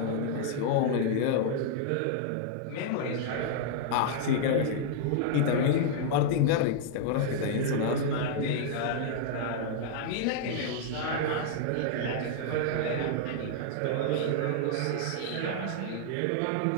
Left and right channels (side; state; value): both; different; correlation -0.01